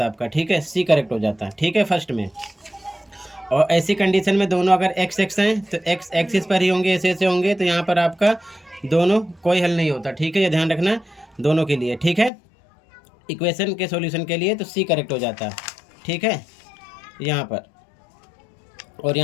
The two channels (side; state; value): right; drops out; at 12.3 s